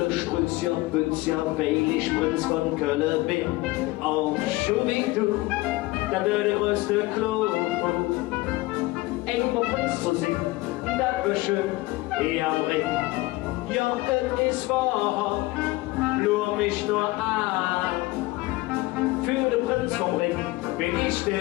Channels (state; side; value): quieter; right; 20.5 dB